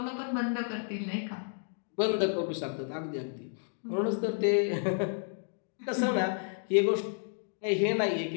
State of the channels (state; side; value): silent; right; 57 dB below the other